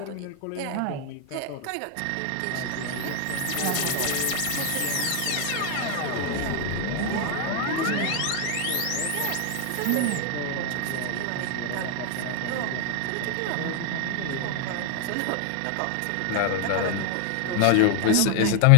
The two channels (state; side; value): different; both; correlation 0.00